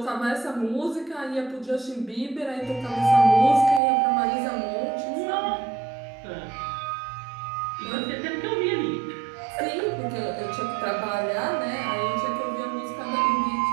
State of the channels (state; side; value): drops out; left; at 3.8 s